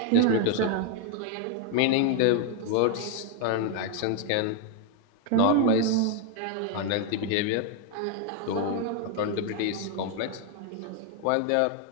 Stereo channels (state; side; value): different; both; correlation 0.00